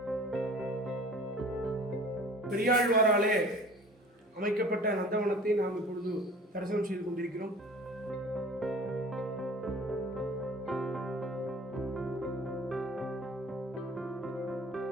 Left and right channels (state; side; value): normal; both; correlation 0.45